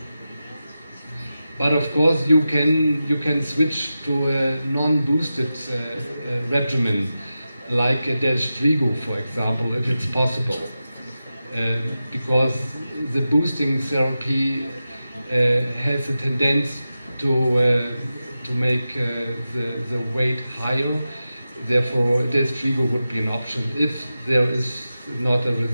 But of course you can switch to a non-boosted regimen, like a Delstrigo, for example, if it's possible, because the boosting therapy has a tendency to make the weight higher. Therefore, Delstrigo would be an option if there is not a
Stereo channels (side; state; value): both; inverted; correlation -0.92